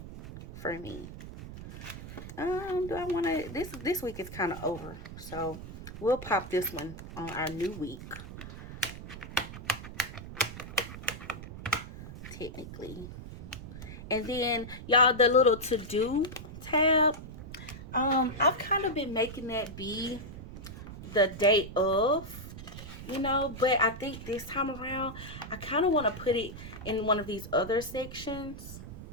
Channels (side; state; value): right; noise; rumble, 11 dB below the sound